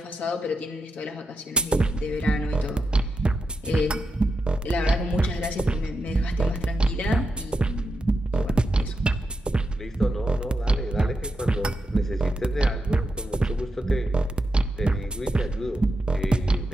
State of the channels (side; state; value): both; normal; correlation 0.87